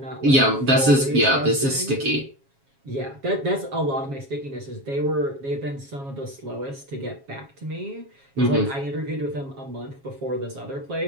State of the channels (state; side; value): late; left; 7.3 ms